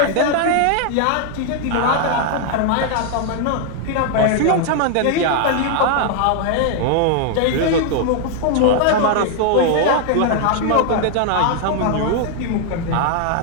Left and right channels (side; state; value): both; different; correlation 0.00